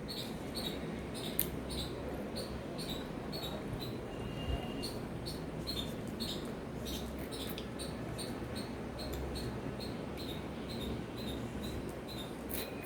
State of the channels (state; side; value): identical; both; correlation 1.00